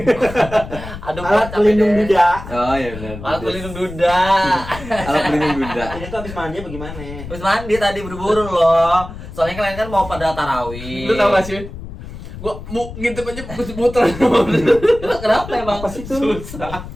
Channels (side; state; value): left; noise; rumble, 12 dB below the sound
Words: Alat pelindung duda. Oh iya benar. Alat pelindung duda. Alat pelindung duda. Ini tuh habis mandi bagaimana? Habis mandi tadi buru-buru loh. Soalnya kalian kan mau pada tarawih. Lu tau gak sih? Gua mau ngintip aja muter. Kenapa emang? Apa sih itu? Susah.